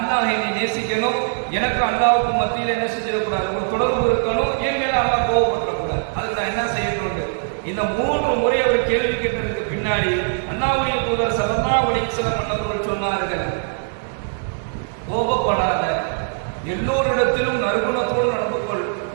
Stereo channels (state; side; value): silent; left; digital silence